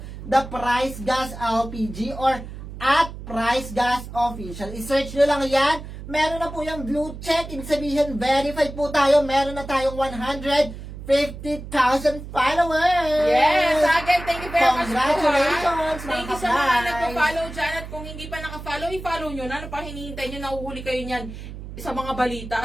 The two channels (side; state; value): right; noise; hum, 11 dB below the sound